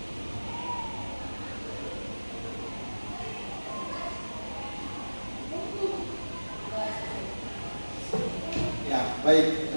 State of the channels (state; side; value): inverted; both; correlation -1.00